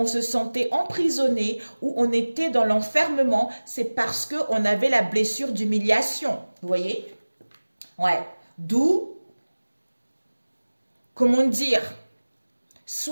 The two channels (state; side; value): inverted; both; correlation -1.00